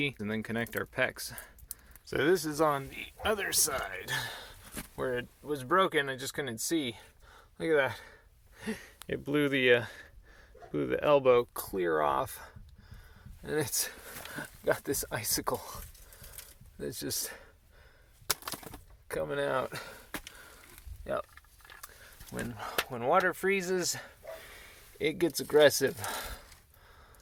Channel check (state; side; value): identical; both; correlation 1.00